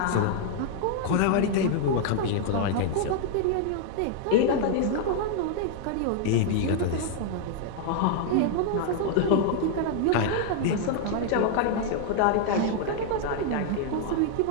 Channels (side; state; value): both; different; correlation 0.00